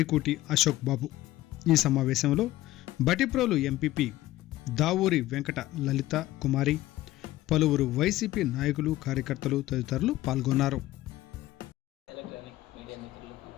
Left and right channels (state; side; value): quieter; right; 16.1 dB